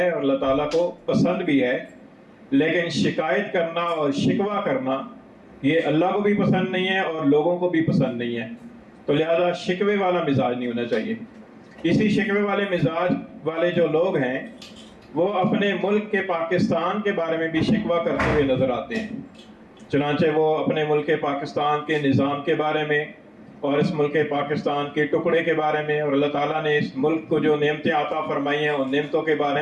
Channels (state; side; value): identical; both; correlation 1.00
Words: اور اللہ تعالیٰ کو پسند بھی ہے۔ لیکن شکایت کرنا اور شکوہ کرنا یہ اللہ کو بھی پسند نہیں ہے اور لوگوں کو بھی پسند نہیں ہے، تو لہذا شکوے والا مزاج نہیں ہونا چاہیے۔ اسی شکوے والے مزاج والے جو لوگ ہیں وہ اپنے ملک کے پاکستان کے بارے میں بھی شکوہ کرتے ہوئے نظر آتے ہیں۔ چنانچہ وہ اپنے ملک پاکستان کے نظام کے بارے میں اور اس ملک پاکستان کے ٹکڑے کے بارے میں اور اللہ تعالیٰ نے اس ملک کو جو نعمتیں عطا فرمائی ہیں ان نعمتوں کے